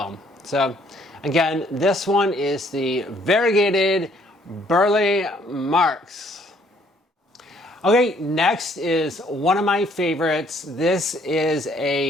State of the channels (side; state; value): both; normal; correlation 0.64